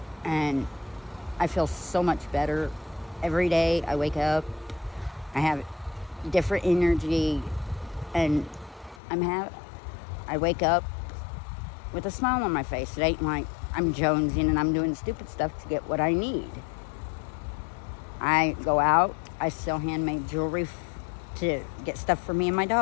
and I feel so much better. Every day I wake up, I have different energy, and I wake up with a smile on my face. It ain't like I'm jonesing and I'm doing stupid stuff to get what I need. I go out, I sell handmade jewelry to get stuff for me and my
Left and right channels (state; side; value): drops out; right; at 9.0 s